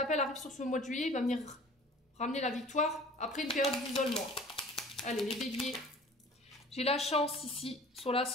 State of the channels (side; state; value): both; normal; correlation 0.46